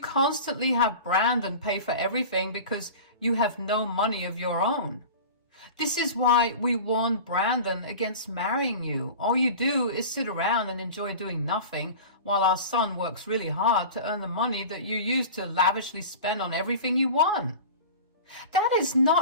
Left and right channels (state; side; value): inverted; both; correlation -0.35